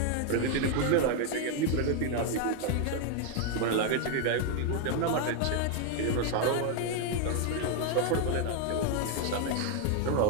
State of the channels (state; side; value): different; both; correlation 0.00